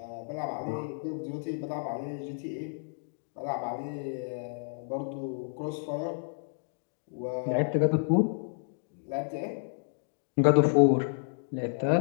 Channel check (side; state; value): right; silent; digital silence